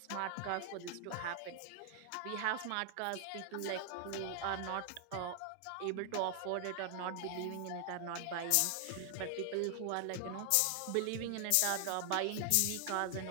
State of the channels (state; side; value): different; both; correlation 0.00